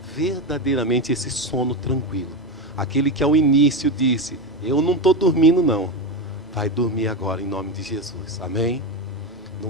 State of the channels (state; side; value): normal; both; correlation 0.15